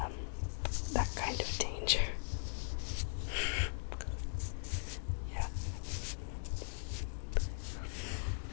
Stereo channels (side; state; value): right; silent; digital silence